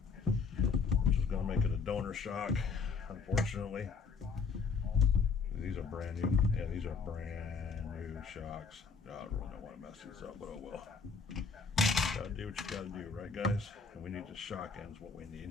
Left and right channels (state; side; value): quieter; right; 5.0 dB